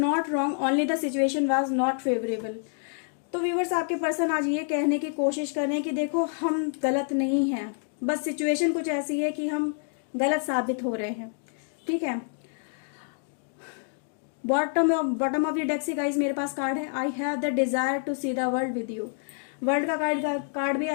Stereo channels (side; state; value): right; silent; 60 dB below the other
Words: wrong, only the situation was not favourable. तो व्यूअर्स आपके पर्सन आज ये कहने की कोशिश कर रहे हैं कि देखो हम गलत नहीं हैं, बस सिचुएशन कुछ ऐसी है कि हम गलत साबित हो रहे हैं, ठीक है। बॉटम ऑफ द डेक से गाइज मेरे पास कार्ड है, I have the desire to see the world with you. World का कार्ड भी